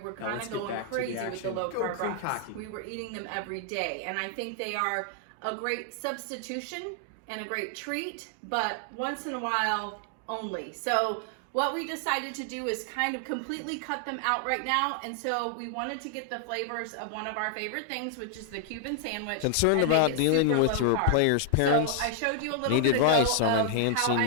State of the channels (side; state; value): both; different; correlation 0.00